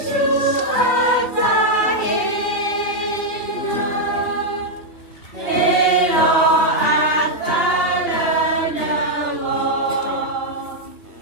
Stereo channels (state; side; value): late; right; 3.3 ms